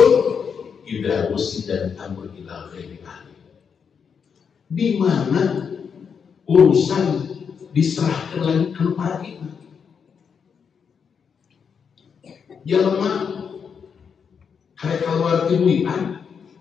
ida usi dan amr ila ghairi ahli. Di mana urusan diserahkan lagi ke para kita. Jelema karek keluar timuian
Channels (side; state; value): right; quieter; 6.6 dB